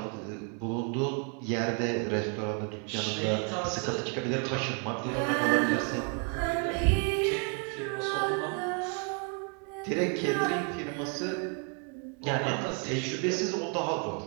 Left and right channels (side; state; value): left; quieter; 36.4 dB